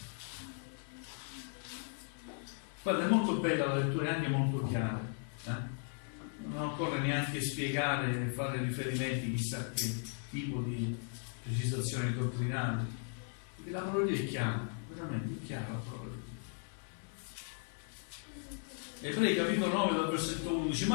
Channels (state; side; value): silent; right; 53 dB below the other